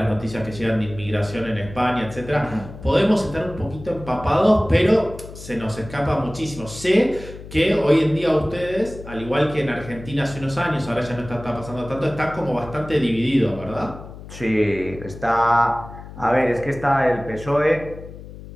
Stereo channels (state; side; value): noise; left; hum, 14 dB below the sound